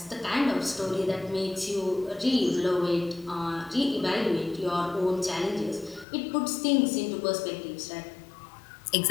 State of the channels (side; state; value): right; drops out; at 6.1 s